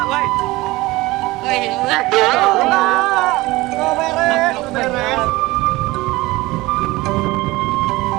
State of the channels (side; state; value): left; quieter; 20.1 dB